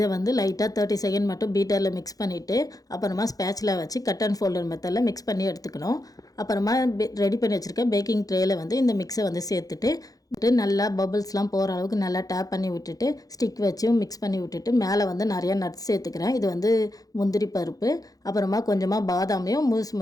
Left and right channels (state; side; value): late; right; 0.18 ms